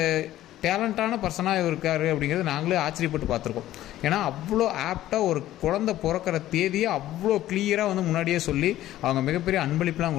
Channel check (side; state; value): right; quieter; 14.1 dB